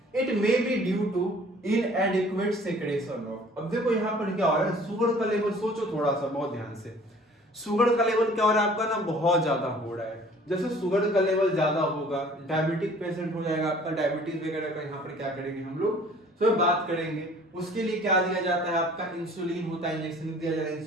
It may be due to inadequate secretion of. अब देखो यहाँ पर क्या हो रहा है, शुगर का लेवल सोचो थोड़ा सा बहुत ध्यान से, शुगर का लेवल क्या हो रहा है आपका ना बहुत ज्यादा हो रहा है। जैसे शुगर का लेवल ज्यादा होगा, डायबिटिक पेशेंट हो जाएगा आपका, डायबिटीज वगैरह का यहाँ पर क्या करेंगे हम लोग तो बात करेंगे। उसके लिए क्या दिया जाता है आपका, इंसुलिन होता है, इंजेक्शन दिया जाता है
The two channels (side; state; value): both; normal; correlation 0.52